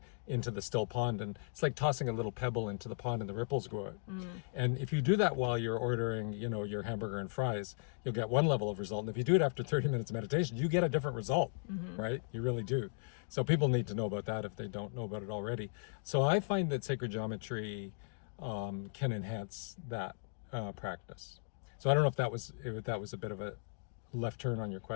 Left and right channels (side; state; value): right; silent; digital silence